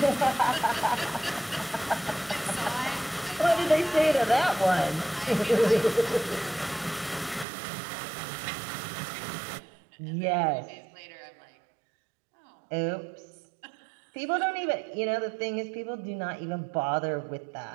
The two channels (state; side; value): drops out; left; at 7.5 s